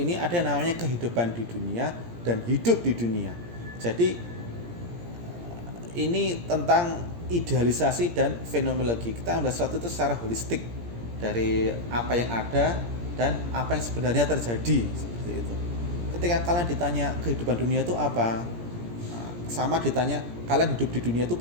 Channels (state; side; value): late; left; 17 ms